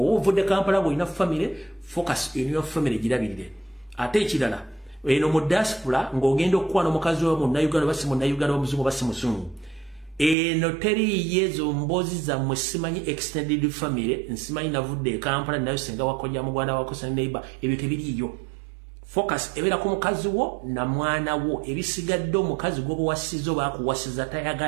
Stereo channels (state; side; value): drops out; left; at 10.4 s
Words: ovudde Kampala ng'olina family, focus in your family girabirire. Ate ekirala eno mu diaspora ng'ogenda okukwana omukazi wa munnayuganda basi munnayuganda wamuzungu basi muzungu eno teriiyo ezo mboozi zammwe simanyi extended family nsimanyi navudde e Kampala nayo senga wakojja mugwanda wako sene neighbor ebyo tebiriiyo. Focus ebeera ku mukazi wo na mwana wo ebisigadde omukazi gw'obuwasiza oba akuwasiza